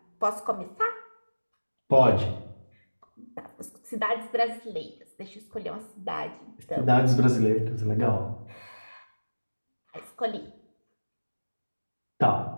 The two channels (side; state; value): both; inverted; correlation -1.00